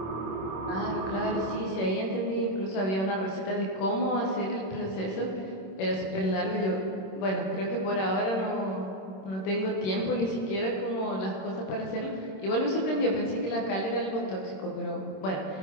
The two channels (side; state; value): right; late; 26 ms